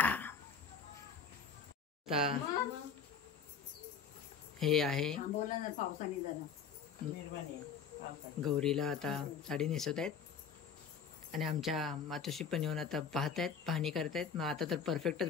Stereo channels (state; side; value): quieter; right; 6.2 dB